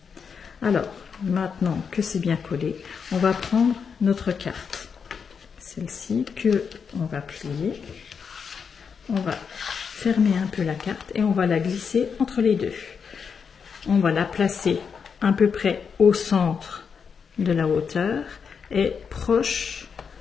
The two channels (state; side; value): quieter; right; 6.3 dB